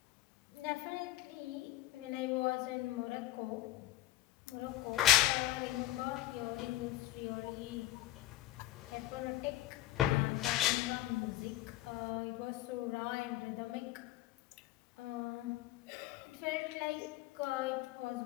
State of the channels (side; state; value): right; quieter; 15.7 dB